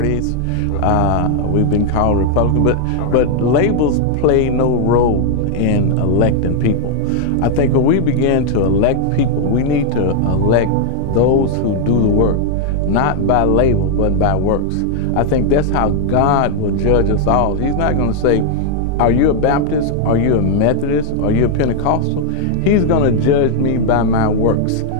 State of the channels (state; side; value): different; both; correlation 0.00